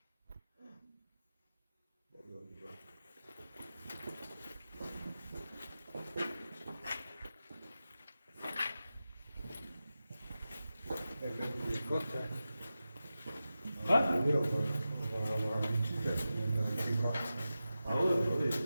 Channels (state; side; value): inverted; both; correlation -0.92